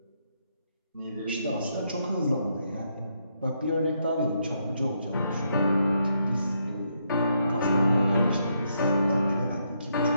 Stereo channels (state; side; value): inverted; both; correlation -0.77